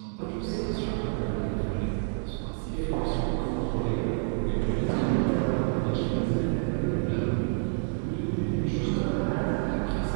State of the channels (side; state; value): left; silent; 55 dB below the other